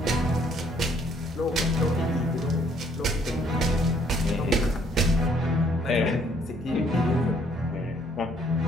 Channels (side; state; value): both; normal; correlation 0.64